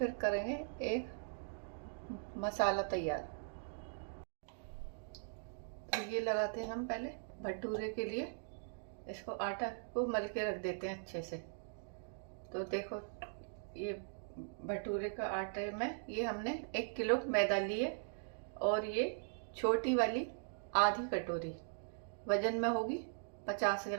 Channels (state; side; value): silent; left; digital silence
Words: करेंगे एक मसाला तैयार। तो ये लगाते हैं हम पहले भटूरे के लिए, इसको आटा को मल के रख देते हैं अच्छे से। तो देखो, ये भटूरे का आटे में ये हमने 1 किलो मैदा लिए, और ये छोटी वाली आधी कटोरी वजन में होगी 50